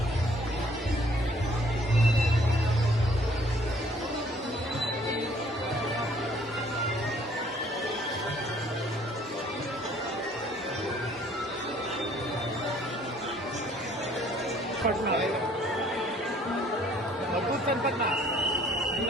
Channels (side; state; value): both; normal; correlation 0.59